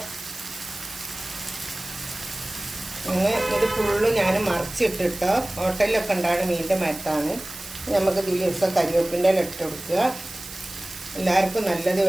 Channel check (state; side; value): noise; right; hiss, 13 dB below the sound